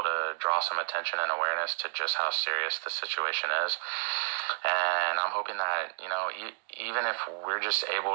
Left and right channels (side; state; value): left; silent; digital silence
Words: to draw some attention and awareness to just how serious the situation is. And I'm hoping that even if we're just able